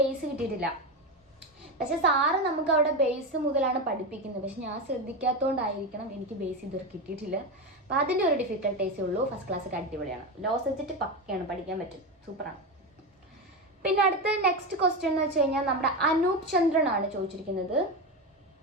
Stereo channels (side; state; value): both; normal; correlation 0.17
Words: കിട്ടിയിട്ടില്ല. പക്ഷേ സാറ് നമുക്ക് അവിടെ ബേസ് മുതലാണ് പഠിപ്പിക്കുന്നത്. പക്ഷെ ഞാൻ ശ്രദ്ധിക്കാത്തതുകൊണ്ടായിരിക്കണം എനിക്ക് ബേസ് ഇതുവരെ കിട്ടിയിട്ടില്ല. അപ്പോൾ അതിൻ്റെ ഒരു ഡിഫിക്കൽട്ടേസേ ഉള്ളൂ. ഫസ്റ്റ് ക്ലാസ്സൊക്കെ അടിപൊളിയാണ്. ലോ സബ്ജക്റ്റ് പക്കയാണ്, പഠിക്കാൻ പറ്റും, സൂപ്പറാണ്. പിന്നെ അടുത്ത നെക്സ്റ്റ് ക്വസ്റ്റ്യൻ എന്ന് വെച്ച് കഴിഞ്ഞാൽ നമ്മുടെ അനൂപ് ചന്ദ്രനാണ് ചോദിച്ചിരിക്കുന്നത്.